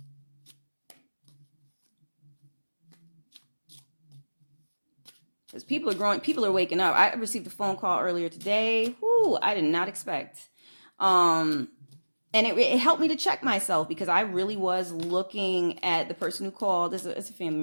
Because people are waking up. I received a phone call earlier today. Whoo, I did not expect. And it helped me to check myself because I really was looking at the person who called as a family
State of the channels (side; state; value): both; inverted; correlation -1.00